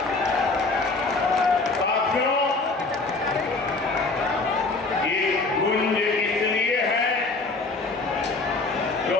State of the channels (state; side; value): quieter; right; 3.6 dB